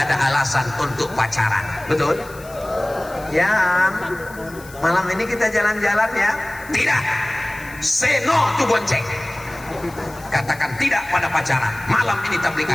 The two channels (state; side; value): noise; left; hiss, 20 dB below the sound